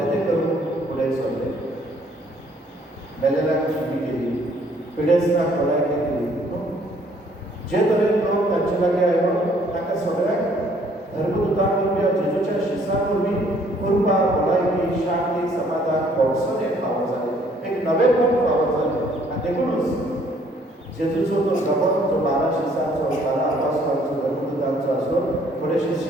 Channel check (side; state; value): both; normal; correlation 0.62